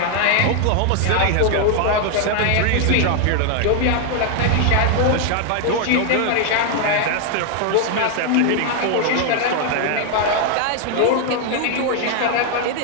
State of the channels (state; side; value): different; both; correlation 0.00